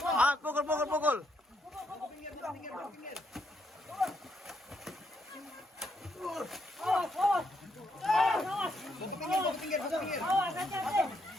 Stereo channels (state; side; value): normal; both; correlation 0.76